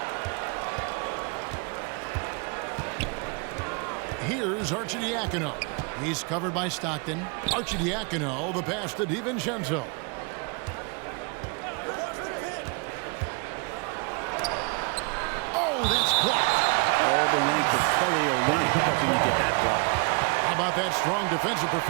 Here's Arcidiacono. He's covered by Stockton. Arcidiacono, the pass to DiVincenzo. Oh, that's blocked. All the length of Kelly Olynyk helping to get that block. How about that strong defensive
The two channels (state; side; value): quieter; left; 31.9 dB